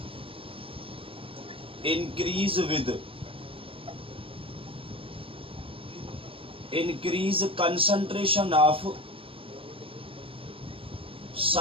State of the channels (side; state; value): left; late; 0.26 ms